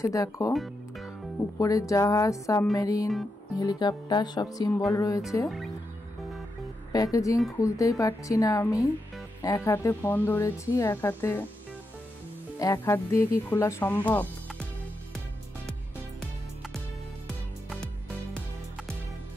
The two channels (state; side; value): normal; both; correlation 0.85